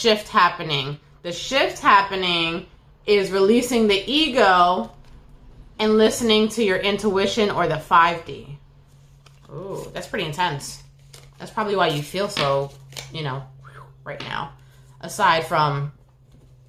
happening. The shift happening is releasing the ego and listening to your intuition or the 5D. Ooh, that's pretty intense. That's probably why you feel so, right now. Aside from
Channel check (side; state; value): both; identical; correlation 1.00